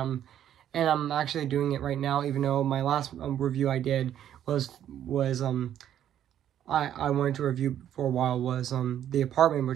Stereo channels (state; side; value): quieter; left; 10.6 dB